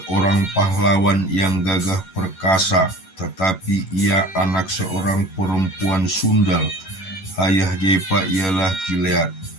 pahlawan yang gagah perkasa, tetapi ia anak seorang perempuan sundal. Ayah Yepa ialah Gilead.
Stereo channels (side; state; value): right; late; 11 ms